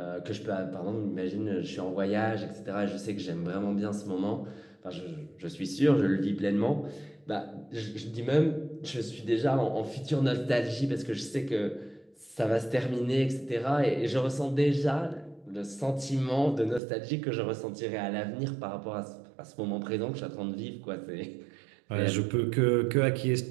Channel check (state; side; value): drops out; left; at 16.8 s